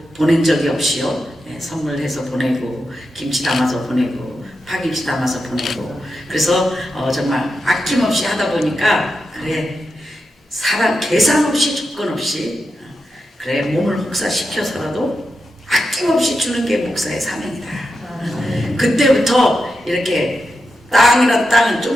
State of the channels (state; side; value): normal; both; correlation 0.88